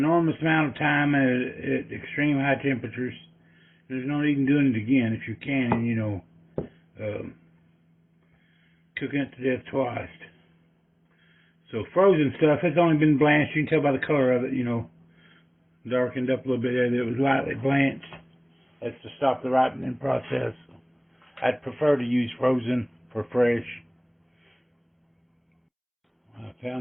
amount of time at extreme high temperatures. There's no need in doing it again if you can, and you know, cooking it to death twice. So frozen stuff, it's only been blanched. You can tell by the color of it, you know, darkened up a little bit there that it was lightly blanched. That's to stop the ripening process. I'd prefer to use frozen for fresh. I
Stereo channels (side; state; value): both; identical; correlation 1.00